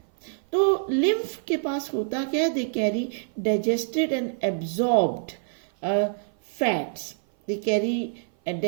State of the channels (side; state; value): left; silent; 57 dB below the other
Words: तो lymph के पास होता क्या है? They carry digested and absorbed fats. They carry